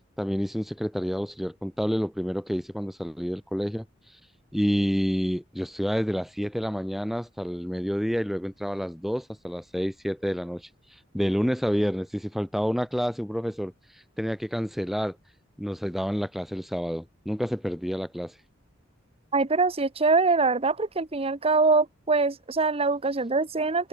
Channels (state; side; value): normal; both; correlation 0.56